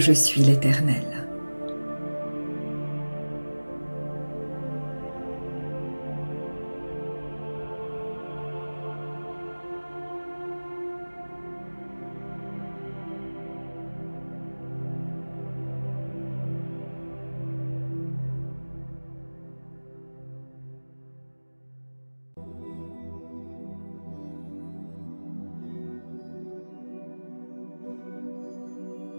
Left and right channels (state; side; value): inverted; both; correlation -1.00